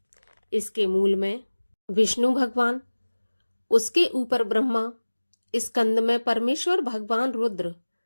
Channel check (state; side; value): inverted; both; correlation -1.00